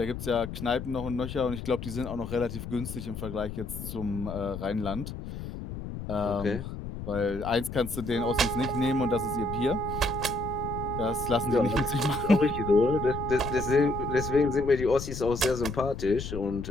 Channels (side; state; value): left; noise; rumble, 8 dB below the sound